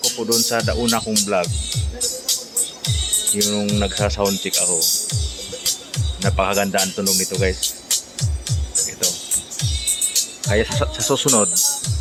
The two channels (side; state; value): both; identical; correlation 1.00